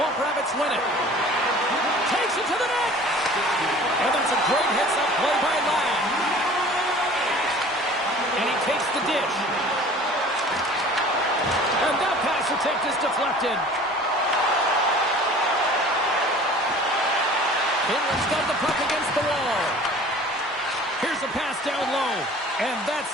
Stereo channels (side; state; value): both; normal; correlation 0.46